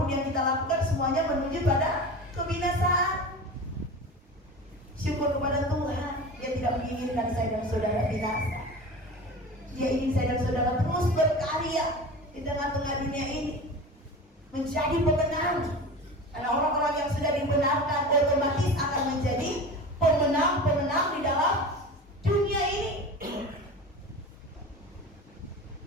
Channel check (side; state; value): both; normal; correlation 0.32